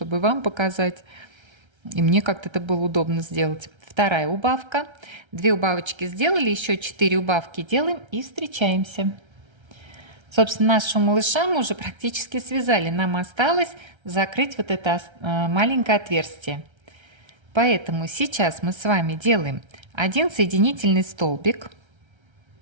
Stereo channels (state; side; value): late; left; 1.3 ms